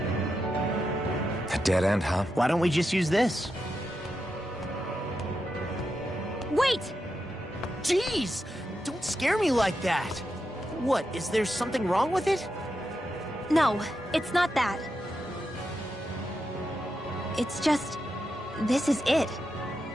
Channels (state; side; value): normal; both; correlation 0.87